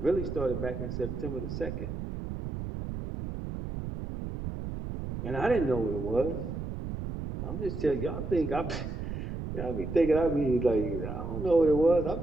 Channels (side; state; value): right; noise; rumble, 6 dB below the sound